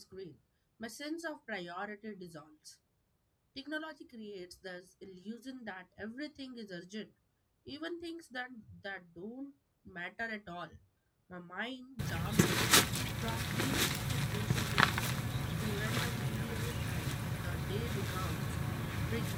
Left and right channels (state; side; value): identical; both; correlation 1.00